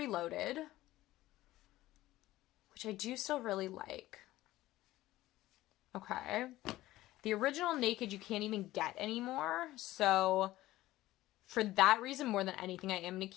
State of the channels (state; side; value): quieter; right; 16.3 dB